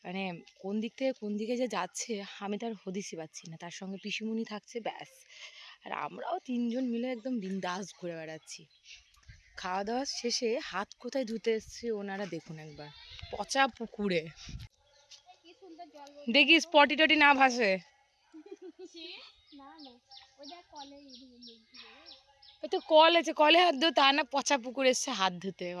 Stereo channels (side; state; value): both; identical; correlation 1.00